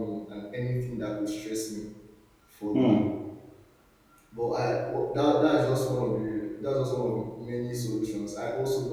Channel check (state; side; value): identical; both; correlation 1.00